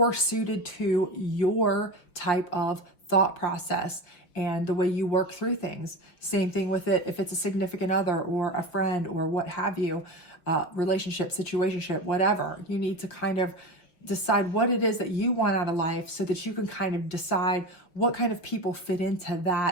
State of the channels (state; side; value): late; right; 5.6 ms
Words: suited to your type of thought process and the way you work through things. Same thing with it if it's a significant other or a friend or what have you, relationship, situationship, whatever. You need to kind of decide what it is that you want out of life, so that you can kind of decide what kind of people fit into